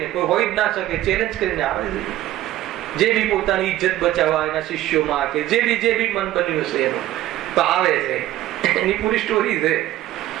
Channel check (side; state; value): left; quieter; 14.4 dB